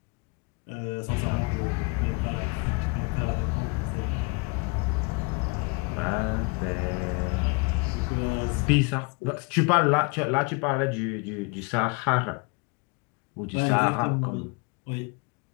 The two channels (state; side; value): quieter; right; 29.6 dB